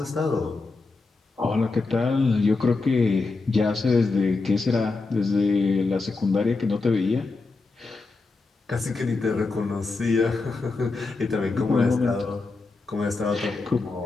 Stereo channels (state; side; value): quieter; right; 3.8 dB